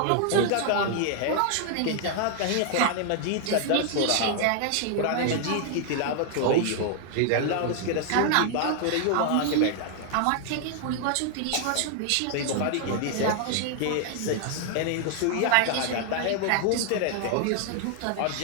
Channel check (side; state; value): both; different; correlation 0.00